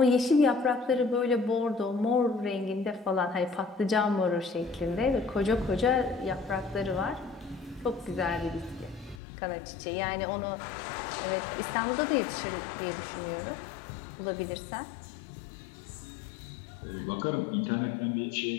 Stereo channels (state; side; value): drops out; right; at 9.2 s